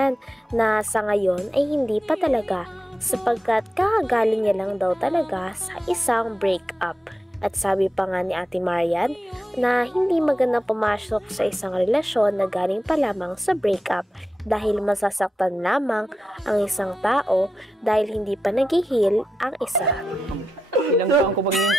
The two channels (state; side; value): normal; both; correlation 0.89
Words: na sa ngayon ay hindi pa talaga sapagkat kakagaling niya lang daw talaga sa isang breakup. At sabi pa nga ni Ate Marian na hindi magandang pumasok sa isang relasyon na galing pa lamang sa breakup dahil masasaktan lamang ang isang tao dahil hindi pa nag-heal ang isa. Ilang taon ko pag